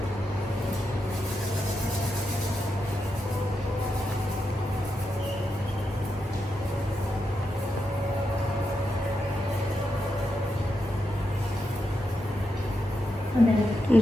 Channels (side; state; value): both; normal; correlation 0.85